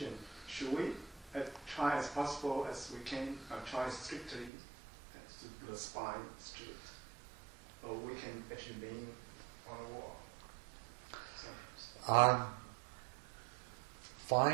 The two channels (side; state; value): left; drops out; at 4.5 s